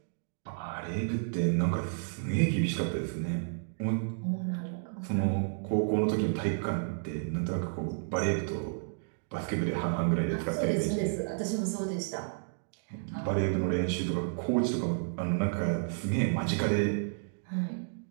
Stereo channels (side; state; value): left; silent; digital silence